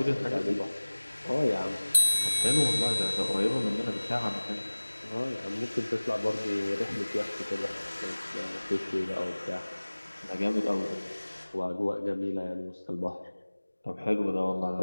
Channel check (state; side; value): inverted; both; correlation -1.00